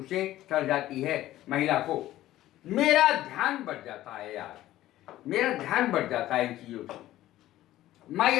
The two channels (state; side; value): quieter; right; 14.6 dB